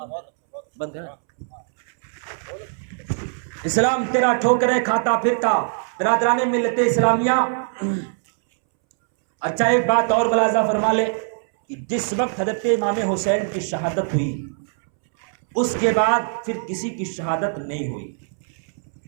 بند کر. اسلام تیرا ٹھوکریں کھاتا پھرتا. برادران ملت اسلامیہ، اچھا ایک بات اور ملاحظہ فرما لے کہ جس وقت حضرت امام حسین کی شہادت ہوئی اس کے بعد پھر کسی کی شہادت نہیں ہوئی.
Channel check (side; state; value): left; silent; 64 dB below the other